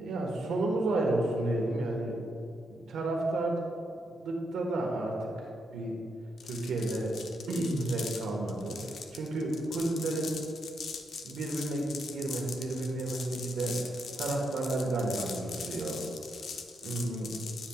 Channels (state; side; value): normal; both; correlation 0.80